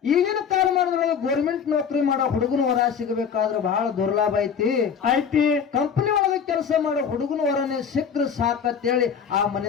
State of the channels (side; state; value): right; quieter; 7.0 dB